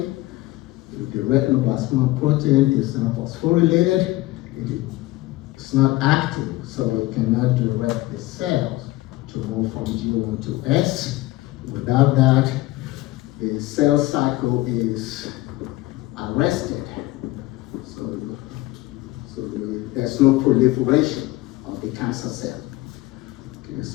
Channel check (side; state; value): right; quieter; 18.5 dB